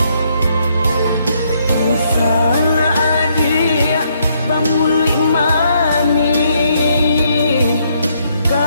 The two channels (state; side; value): inverted; both; correlation -0.73